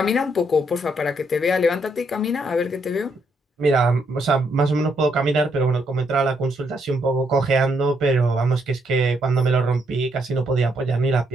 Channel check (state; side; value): normal; both; correlation 0.75